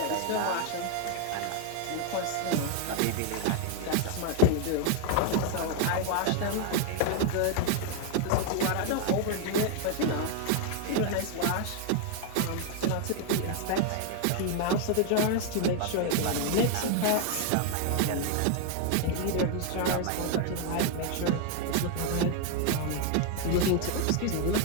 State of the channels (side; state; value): both; different; correlation 0.01